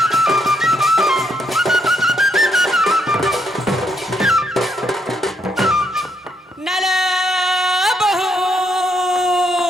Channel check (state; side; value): normal; both; correlation 0.75